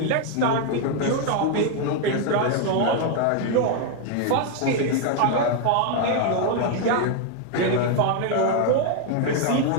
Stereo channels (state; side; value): different; both; correlation 0.01